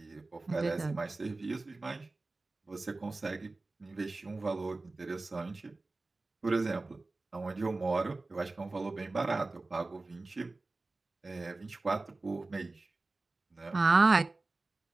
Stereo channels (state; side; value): quieter; left; 3.3 dB